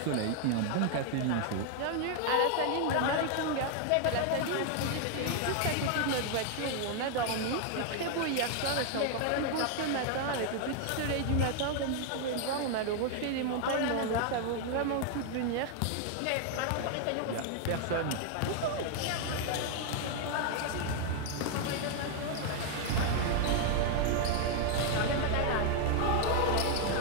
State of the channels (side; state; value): both; different; correlation 0.00